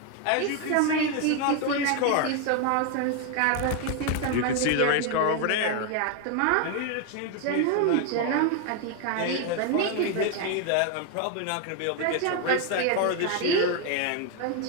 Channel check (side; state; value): both; different; correlation 0.01